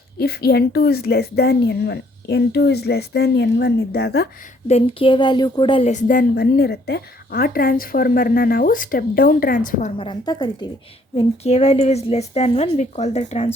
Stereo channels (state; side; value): normal; both; correlation 0.64